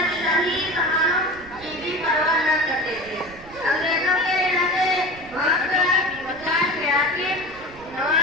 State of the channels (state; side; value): noise; right; rumble, 20 dB below the sound